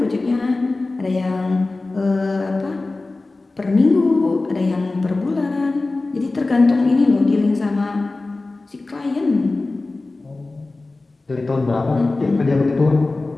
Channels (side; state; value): right; quieter; 3.3 dB